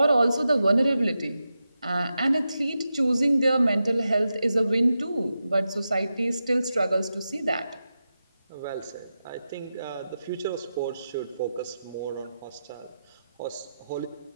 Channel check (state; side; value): inverted; both; correlation -0.90